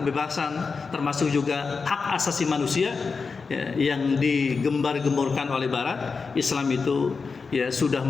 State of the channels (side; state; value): right; quieter; 4.8 dB